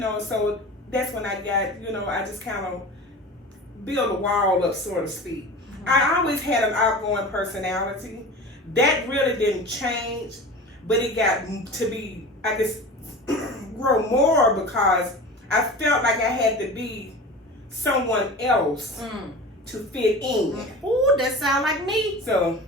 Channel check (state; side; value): normal; both; correlation 0.35